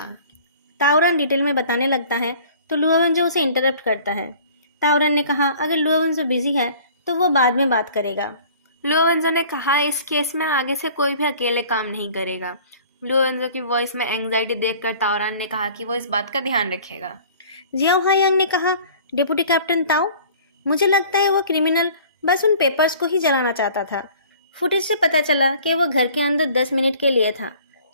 ताओरन डिटेल में बताने लगता है तो लुओवेंजो उसे इंटरप्ट करता है। ताओरन ने कहा अगर लुओवेंजो बिजी है तो वो बाद में बात करेगा। लुओवेंजो ने कहा इस केस में आगे से कोई भी अकेले काम नहीं करेगा। लुओवेंजो की वॉइस में एंग्जाइटी देखकर ताओरान ने कहा कि वो इस बात का ध्यान रखेगा। जियाओ हायांग ने कहा डिप्टी कैप्टन ताओ, मुझे लगता है वो क्रिमिनल बस उन पेपर्स को ही जलाना चाहता था। फुटेज से पता चला कि वो घर के अंदर 10 मिनट के लिए था।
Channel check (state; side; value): inverted; both; correlation -0.49